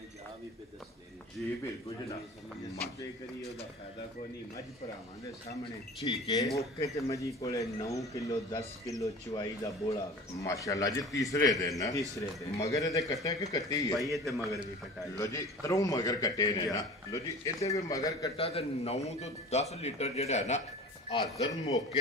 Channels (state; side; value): normal; both; correlation 0.39